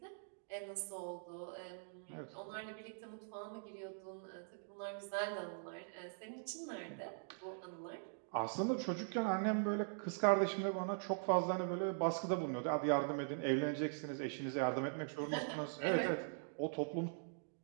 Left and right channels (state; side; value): silent; left; digital silence